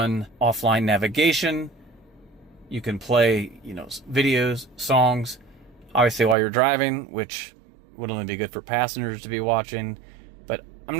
offline navigation. You can play, videos, songs, obviously while you're driving, which would only be good for passengers to be watching. But I'm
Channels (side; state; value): left; drops out; at 6.4 s